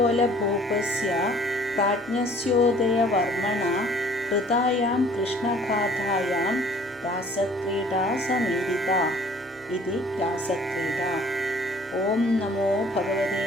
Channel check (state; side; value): normal; both; correlation 0.54